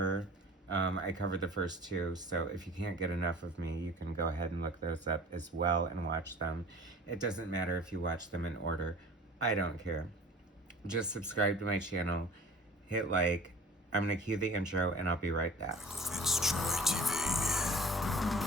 I covered the first two, so if you can't get enough of me, you can go ahead and look those up as well and watch them. It doesn't matter if you watch them in order. I don't care. Just subscribe to my channel, hit like. I'm going to cue the intro, and I'll be right back. FitzTroytv.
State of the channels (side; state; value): both; normal; correlation 0.43